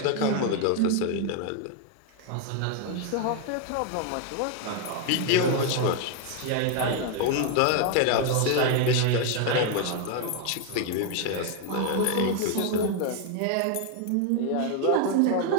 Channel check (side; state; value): both; different; correlation 0.01